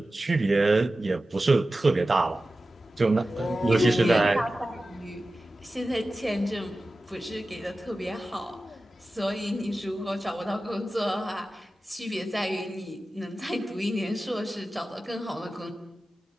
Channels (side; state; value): both; normal; correlation 0.95